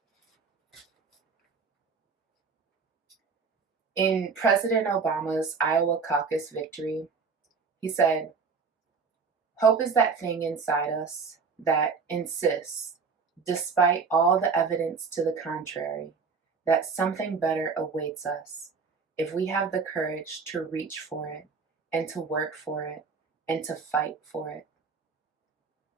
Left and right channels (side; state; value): left; quieter; 5.2 dB